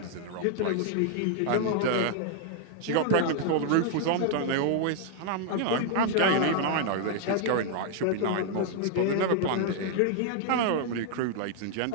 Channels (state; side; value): different; both; correlation 0.00